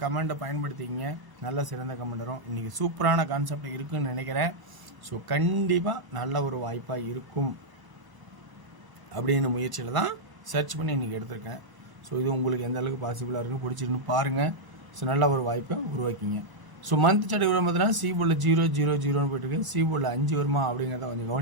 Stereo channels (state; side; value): late; left; 1.0 ms